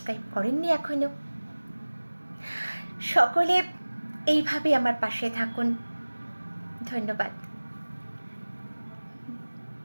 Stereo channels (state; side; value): inverted; both; correlation -1.00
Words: করেননি এখনো। সকলে এইভাবে আমার পাশে থাকুন। ধন্যবাদ,